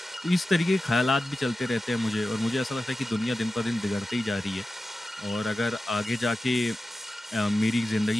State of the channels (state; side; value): normal; both; correlation 0.93